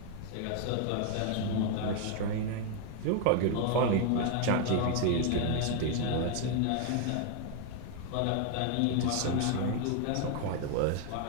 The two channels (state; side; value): different; both; correlation 0.00